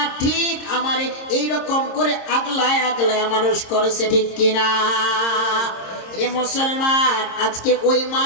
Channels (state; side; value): late; right; 26 ms